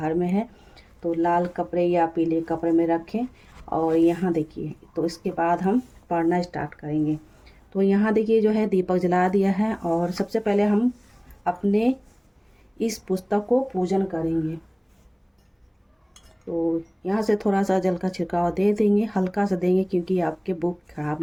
है। तो लाल कपड़े या पीले कपड़े में रखें। और यहाँ देखिए तो इसके बाद हम पढ़ना स्टार्ट करेंगे। तो यहाँ देखिए जो है दीपक जला दिया है और सबसे पहले हम अपने इस पुस्तक को पूजन करेंगे। तो यहाँ से थोड़ा सा जल का छिड़काव दे देंगे, हल्का सा देंगे क्योंकि आपके बुक खराब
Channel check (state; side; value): identical; both; correlation 1.00